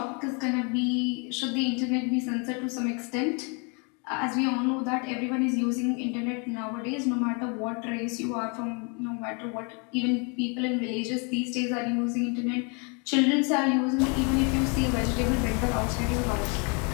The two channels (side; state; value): right; quieter; 34.4 dB